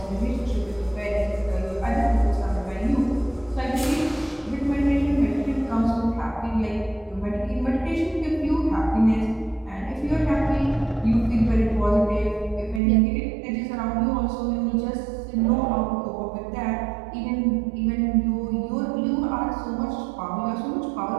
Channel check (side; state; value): left; drops out; at 12.8 s